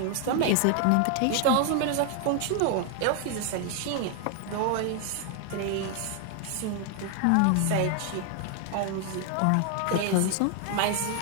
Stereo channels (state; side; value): different; both; correlation 0.00